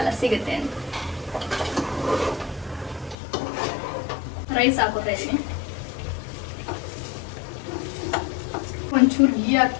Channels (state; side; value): drops out; right; at 3.2 s